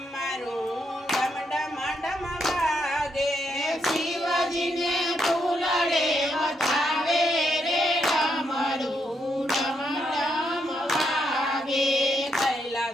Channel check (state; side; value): normal; both; correlation 0.79